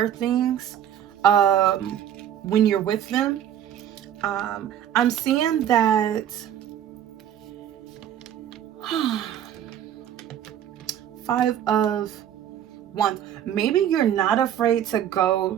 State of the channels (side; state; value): left; quieter; 10.2 dB